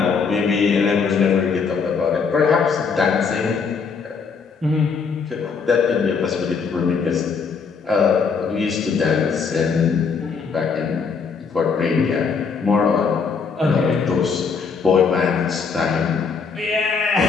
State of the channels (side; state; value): right; quieter; 5.5 dB